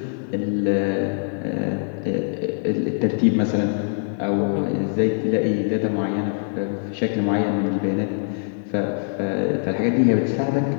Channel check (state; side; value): silent; right; 63 dB below the other